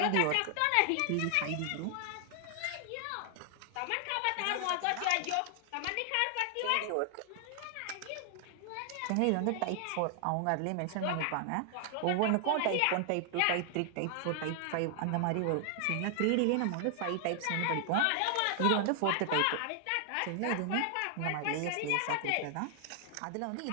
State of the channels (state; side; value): different; both; correlation 0.00